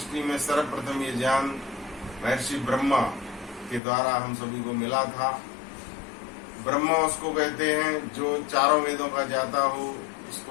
में सर्वप्रथम ये ज्ञान महर्षि ब्रह्मा के द्वारा हम सभी को मिला था। ब्रह्मा उसको कहते हैं जो 4 वेदों का ज्ञाता हो,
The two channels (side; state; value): right; drops out; at 3.8 s